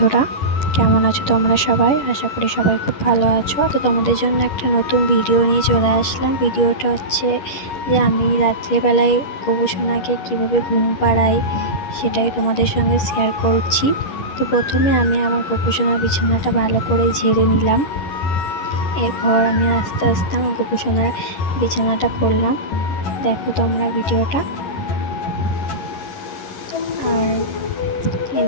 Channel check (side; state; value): right; late; 11 ms